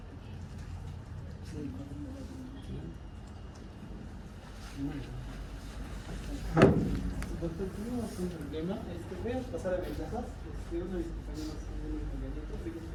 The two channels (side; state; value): both; identical; correlation 1.00